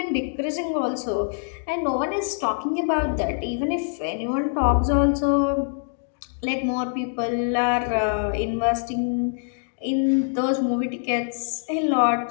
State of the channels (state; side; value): silent; right; digital silence